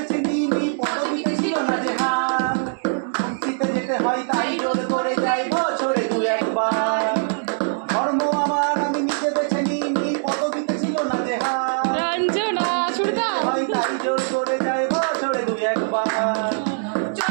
নিইনি, পদবিতে ছিল না যে হার। শান্তিতে যেতে হয় তাই জোর করে যাই বছরে দু একবার। ধর্ম আমার আমি নিজে বেছে নিইনি, পদবিতে ছিল না যে হার। রঞ্জনা সুরদা হয় তাই জোর করে যাই বছরে দু একবার।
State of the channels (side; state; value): left; silent; digital silence